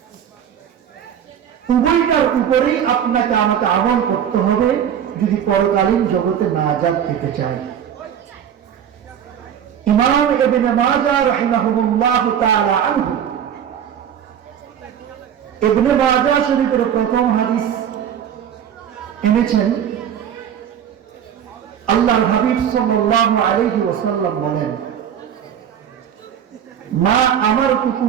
উভয়টার উপরেই আপনাকে আমাকে আমল করতে হবে যদি পরকালীন জগতে নাজাত পেতে চাই। ইমাম ইবনে মাজাহ রাহিমাহুল্লাহ তাআলা আনহু ইবনে মাজাহ শরীফের প্রথম হাদিস এনেছেন। আল্লাহর হাবিব সাল্লাল্লাহু আলাইহি ওয়াসাল্লাম বলেন, মা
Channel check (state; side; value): quieter; left; 9.0 dB